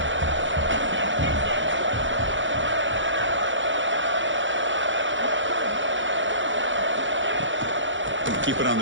Keep it on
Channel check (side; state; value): left; late; 0.55 ms